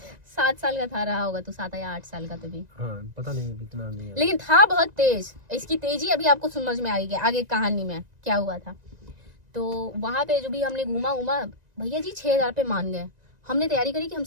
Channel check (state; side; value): late; left; 1.9 ms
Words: 7 साल का था, रहा होगा तो 7 या 8 साल का तभी, हाँ पता नहीं इतना नहीं याद। लेकिन था बहुत तेज। इसकी तेजी अभी आपको समझ में आएगी आगे कहानी में क्या हुआ था। तो वहाँ पे जो भी हमने घूमा, भैया जी 6,000 पे मान गए। हमने तैयारी करी कि हम